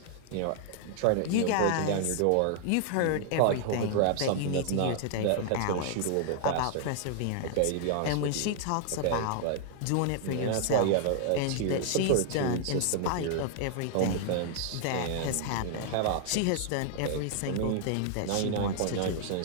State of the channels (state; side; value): different; both; correlation 0.00